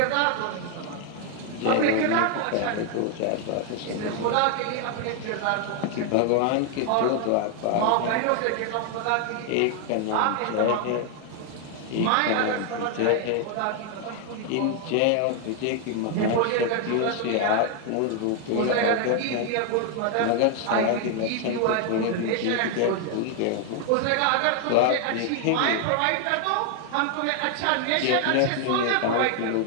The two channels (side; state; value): both; different; correlation 0.00